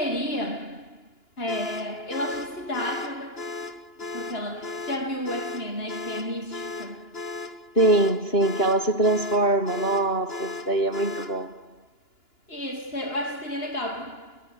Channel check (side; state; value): right; late; 2.9 ms